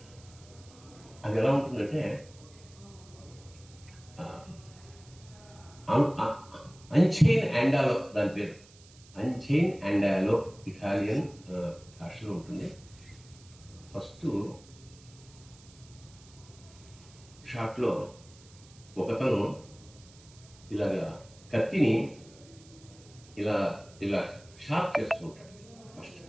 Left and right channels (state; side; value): noise; right; hiss, 24 dB below the sound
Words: ఎలా ఉంటుందంటే అంచైన్ అండాలో, దాని పేరు అంచైన్ అండాలో, ఇటాలియన్ భాషలో ఉంటుంది. ఫస్ట్ షాట్లో ఒకతను ఇలాగా కత్తిని ఇలా ఇలా షార్ప్ చేస్తూ ఉంటాడు ఫస్ట్,